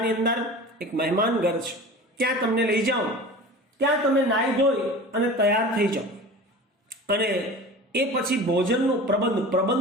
અંદર એક મહેમાન ઘર છે, ત્યાં તમને લઈ જાઉં. ત્યાં તમે નાહી ધોઈ અને તૈયાર થઈ જાઓ. અને એ પછી ભોજનનો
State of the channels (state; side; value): normal; both; correlation 0.37